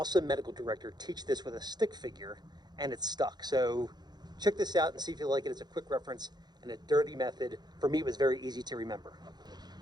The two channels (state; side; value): late; left; 0.20 ms